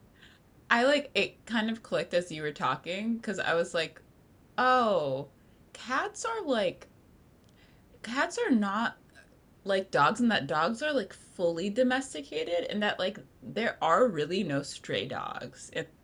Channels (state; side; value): identical; both; correlation 1.00